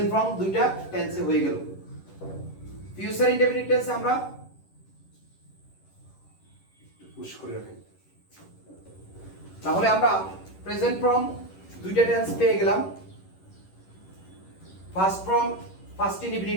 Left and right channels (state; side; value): late; right; 11 ms